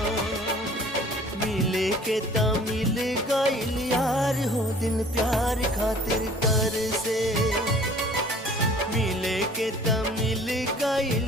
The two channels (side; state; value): both; normal; correlation 0.51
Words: मिले के त मिल गइल यार हो दिल प्यार खातिर तर से। मिले के त मिल